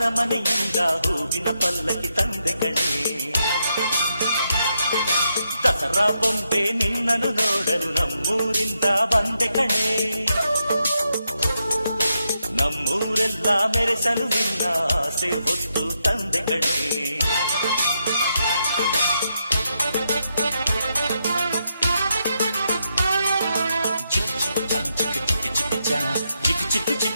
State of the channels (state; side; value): inverted; both; correlation -0.82